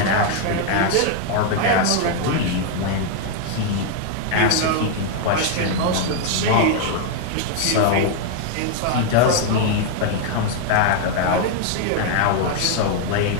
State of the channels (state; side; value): different; both; correlation 0.00